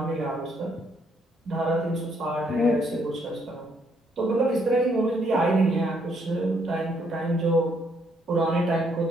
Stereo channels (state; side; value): normal; both; correlation 0.71